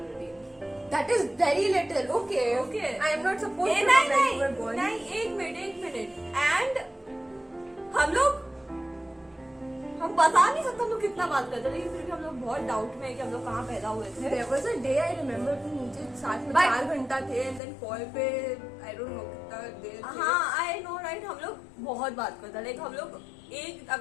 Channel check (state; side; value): drops out; right; at 17.6 s